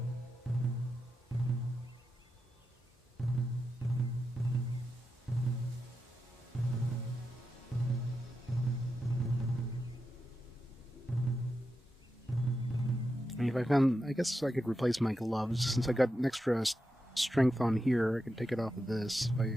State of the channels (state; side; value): normal; both; correlation 0.88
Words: I mean, if I found, I guess I could replace my gloves since I got an extra strength on here. I can take it off of this if